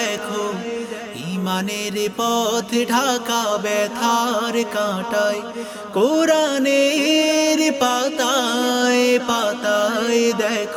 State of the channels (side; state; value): both; identical; correlation 1.00